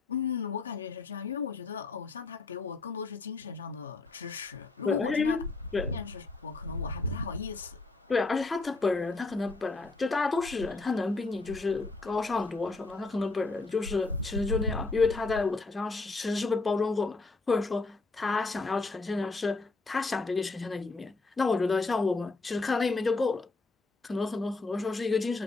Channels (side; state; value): right; quieter; 3.6 dB